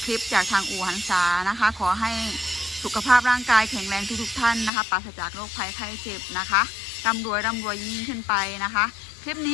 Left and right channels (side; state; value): right; drops out; at 4.7 s